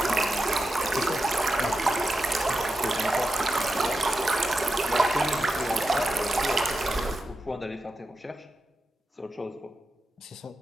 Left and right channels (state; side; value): normal; both; correlation 0.90